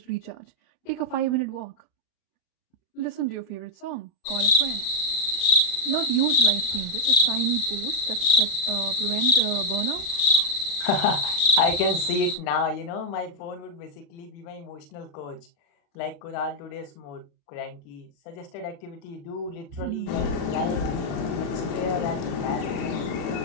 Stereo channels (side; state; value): right; late; 36 ms